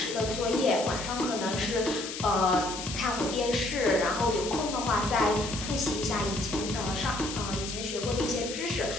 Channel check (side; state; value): left; noise; hiss, 7 dB below the sound